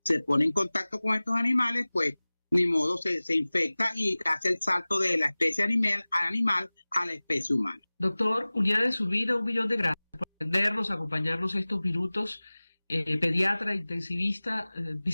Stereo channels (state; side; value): inverted; both; correlation -0.99